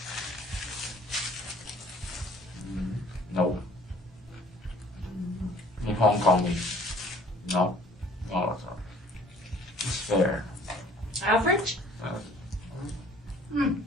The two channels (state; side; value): normal; both; correlation 0.54